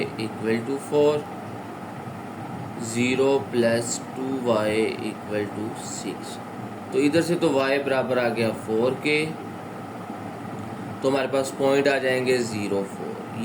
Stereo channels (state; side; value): identical; both; correlation 1.00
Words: equal to 4, 0 plus 2y equal to 6। तो इधर से तो y बराबर आ गया 4 के, तो हमारे पास पॉइंट आ जाएंगे 0 4,